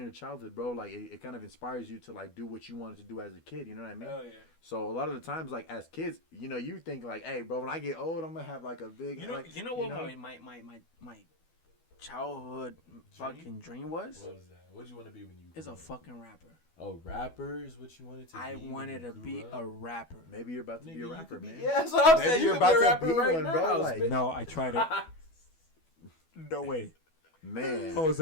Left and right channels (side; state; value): right; late; 12 ms